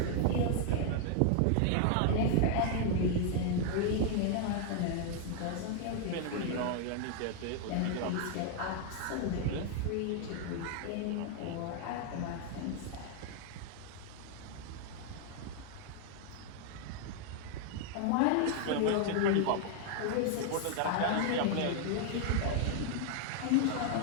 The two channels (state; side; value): different; both; correlation 0.00